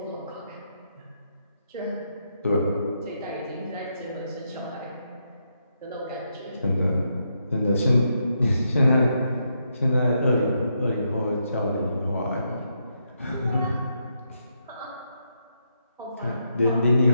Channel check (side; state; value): both; inverted; correlation -0.80